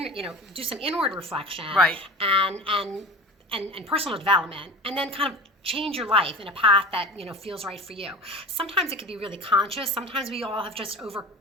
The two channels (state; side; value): normal; both; correlation 0.33